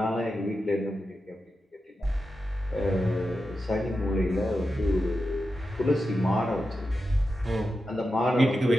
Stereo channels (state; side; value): normal; both; correlation 0.90